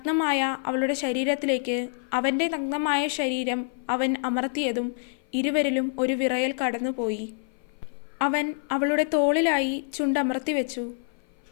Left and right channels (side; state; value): right; silent; 55 dB below the other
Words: അവളുടെ ശരീരത്തിലേക്ക് അവൻ്റെ നഗ്നമായ ശരീരം അവൻ അമർത്തിയതും ഇരുവരിലും ഒരു വിറയൽ കടന്നുപോയി. അവൻ അവളുടെ തോളിലായി ചുണ്ടമർത്തി വെച്ചു.